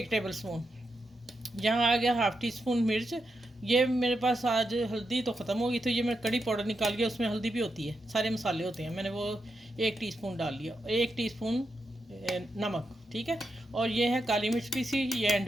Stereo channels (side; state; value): both; normal; correlation 0.85